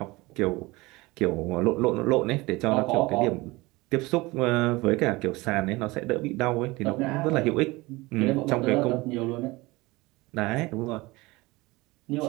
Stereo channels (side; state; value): left; quieter; 22.0 dB